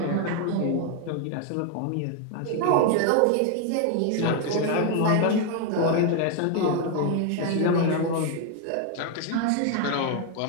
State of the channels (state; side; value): different; both; correlation 0.01